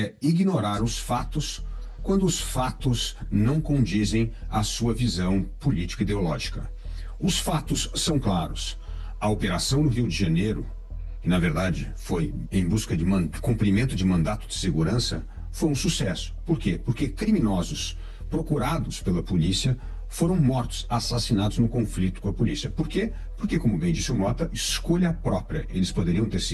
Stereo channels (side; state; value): both; identical; correlation 1.00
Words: ignorar os fatos quando os fatos não condizem à sua visão política e ideológica. Os fatos são claros. A operação no Rio de Janeiro, que na verdade foi em busca de cumprimento de mandato de segurança, foi um sucesso. Por quê? Porque criminosos procurados pela polícia foram mortos, assassinados no conflito com a polícia. Por quê? Porque, como bem disse o Mota, escolha própria. Eles poderiam ter se